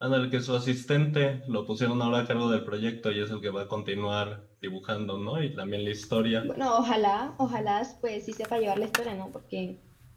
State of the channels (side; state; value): both; identical; correlation 1.00